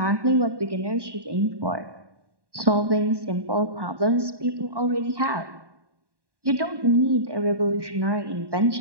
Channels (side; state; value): left; late; 1.1 ms